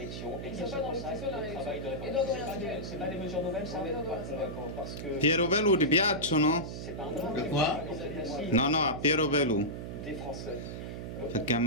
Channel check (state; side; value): noise; right; hum, 7 dB below the sound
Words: et qu'il se consacre au travail de réforme. C'est pas des mesures nouvelles, ça? Parce que Piero Velù ti piacciono? c'est pas un De quoi? No, no, a Piero Velù. des Français. Perché ha